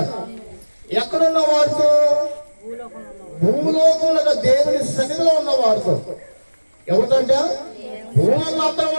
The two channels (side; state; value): both; inverted; correlation -1.00